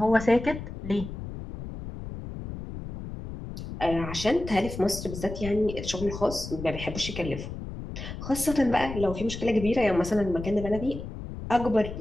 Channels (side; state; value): left; noise; rumble, 9 dB below the sound